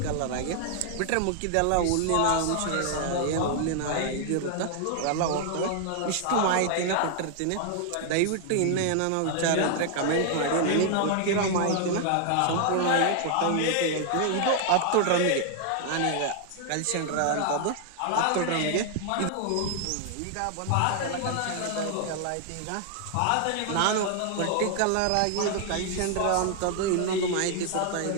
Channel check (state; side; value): different; both; correlation 0.00